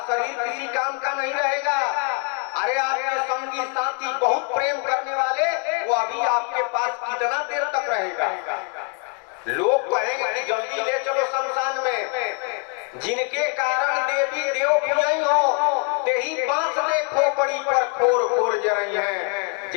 शरीर किसी काम का नहीं रहेगा। अरे आपके संगी साथी बहुत प्रेम करने वाले वो अभी आपके पास कितना देर तक रहेगा? लोग कहेंगे कि जल्दी ले चलो शमशान में। जिनके कारण देवी देव पूजई हो ते ही बांस देखो पड़ी पर खोर खोर जरई है।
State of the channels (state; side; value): quieter; right; 39.4 dB